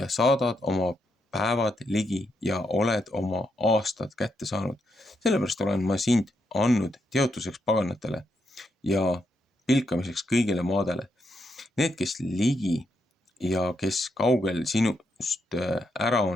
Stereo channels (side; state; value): both; normal; correlation 0.80